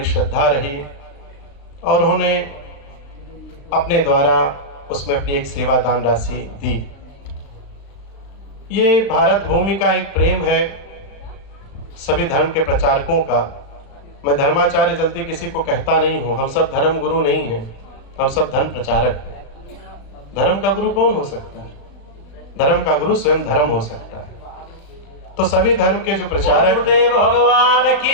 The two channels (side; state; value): right; late; 36 ms